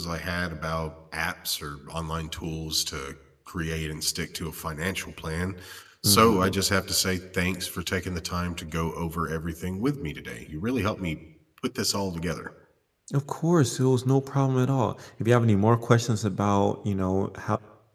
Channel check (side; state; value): both; identical; correlation 1.00